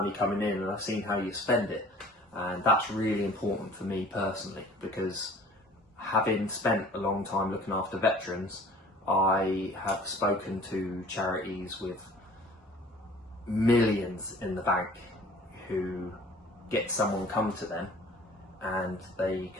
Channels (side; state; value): both; normal; correlation 0.49